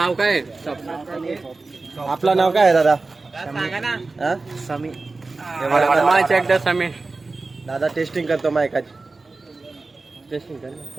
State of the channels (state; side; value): quieter; left; 3.6 dB